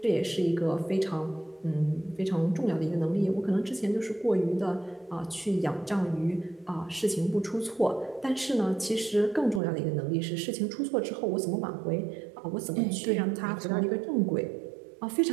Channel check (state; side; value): drops out; left; at 9.6 s